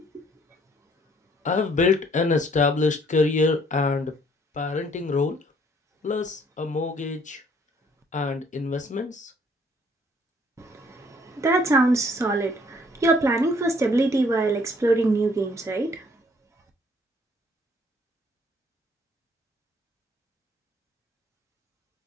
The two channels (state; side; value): normal; both; correlation 0.62